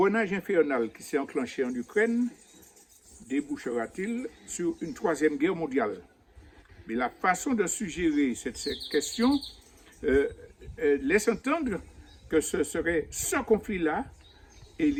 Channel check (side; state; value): both; identical; correlation 1.00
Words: infernal qui s'est enclenché en Ukraine débouchera-t-il sur une troisième guerre mondiale? Mais la façon de suggérer cette question laisse entendre que ce serait ce conflit-là